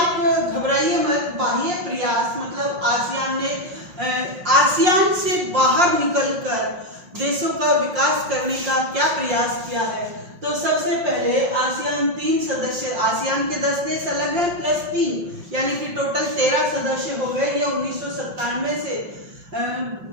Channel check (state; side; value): late; left; 5.6 ms